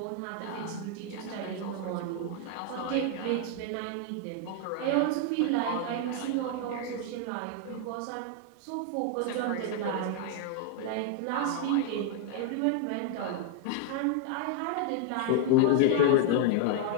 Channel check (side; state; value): both; different; correlation 0.00